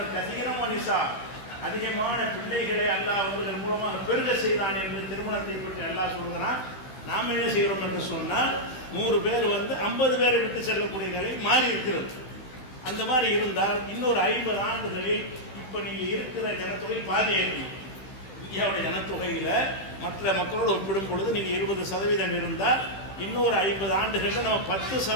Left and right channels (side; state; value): right; late; 16 ms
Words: கசீரம் மனிஷா, அதிகமான பிள்ளைகளை அல்லாஹ் அவர்கள் மூலமாக பெருக செய்தான் என்று திருமணத்தை பற்றி எல்லாம் சொல்கிறான். நாம் என்ன செய்கிறோம் என்று சொன்னால் 100 பேர் 50 பேரை விட்டு செல்லக்கூடிய நிலை மாறி இருக்கிறது. அந்த மாதிரி இருந்தால் இன்னொரு 50 ஆண்டுகளில் இப்போ நீங்கள் இருக்கிற ஜனத்தொகை பாதி இருக்கும். இந்தியாவுடைய ஜனத்தொகையில் மற்ற மக்களோடு ஒப்பிடும் பொழுது நீங்கள் 20% இருந்தால் இன்னொரு 50 ஆண்டுகளில் நம்ம